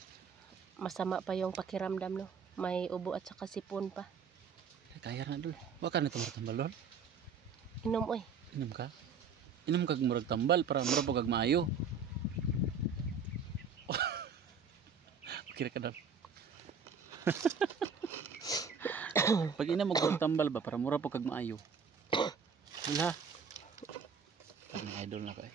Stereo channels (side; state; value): left; quieter; 5.6 dB